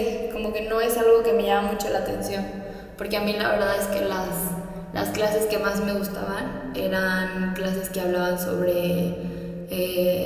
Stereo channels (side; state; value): both; identical; correlation 1.00